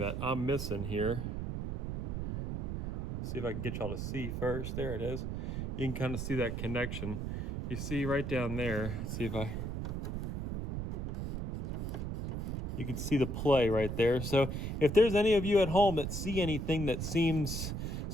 I'm missing here, see if I can get y'all to see first. There it is. You can kind of see that connection. You see right down there. Let's see if you can see the play right there. So if there's any of you at home that see anything that seems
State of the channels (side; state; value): right; noise; rumble, 3 dB below the sound